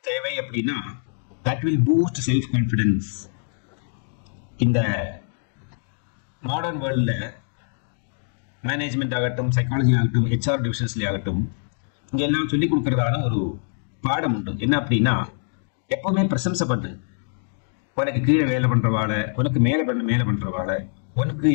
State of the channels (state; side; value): silent; right; digital silence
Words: தேவை அப்படின்னா, that will boost self confidence. இந்த மாடர்ன் வேர்ல்ட்ல மேனேஜ்மெண்ட் ஆகட்டும், சைக்காலஜி ஆகட்டும், HR டிவிஷன்ஸ்ல ஆகட்டும், இங்க எல்லாம் சொல்லிக் கொடுக்கறதான ஒரு பாடம் உண்டு. என்ன அப்படின்னா, எப்பவுமே பிரசம்சை பண்ணு. உனக்கு கீழே வேலை பண்றவாள, உனக்கு மேல பண்றவாள, உனக்கு